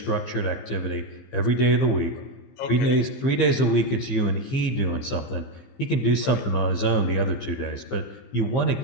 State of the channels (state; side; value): late; right; 15 ms